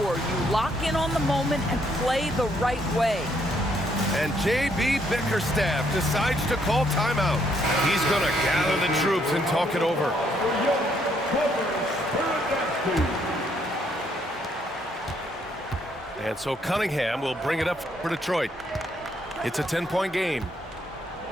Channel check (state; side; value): normal; both; correlation 0.71